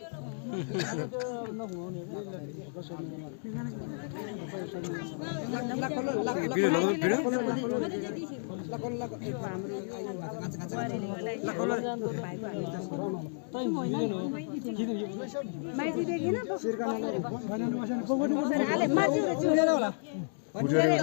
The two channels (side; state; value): right; silent; digital silence